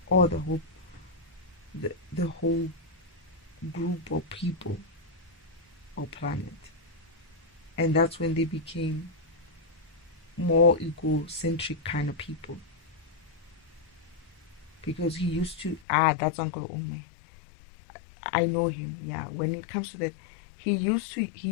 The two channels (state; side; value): drops out; right; at 15.8 s